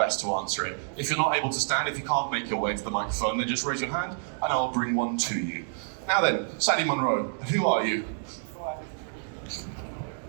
to answer it. If you're not able to stand, if you can't make your way to the microphone, then just raise your hand, and I'll bring one to you. Now then, Sandy Munro, who are you?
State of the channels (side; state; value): left; silent; 59 dB below the other